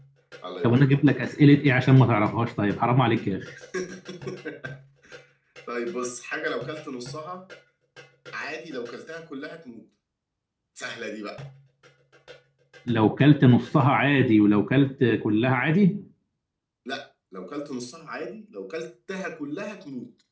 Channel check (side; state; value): both; identical; correlation 1.00